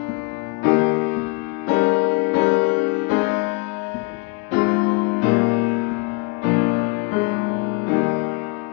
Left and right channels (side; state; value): right; quieter; 30.3 dB